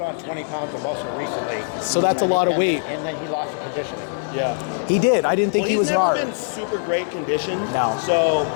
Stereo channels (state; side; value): silent; right; digital silence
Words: on 20 pounds of muscle recently. So that's a lot of weight. And then he lost the conditioning. Yeah. He did. I didn't think he was he's hard. never been super great conditioned. No. So